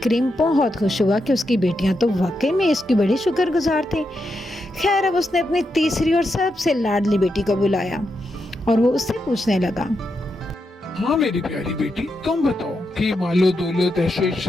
बहुत खुश हुआ कि उसकी बेटियां तो वाकई में इसकी बड़ी शुक्रगुजार थी। खैर, अब उसने अपनी तीसरी और सबसे लाडली बेटी को बुलाया और वो उससे पूछने लगा, हाँ मेरी प्यारी बेटी, तुम बताओ कि मालो दौलत ऐशो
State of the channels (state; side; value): normal; both; correlation 0.84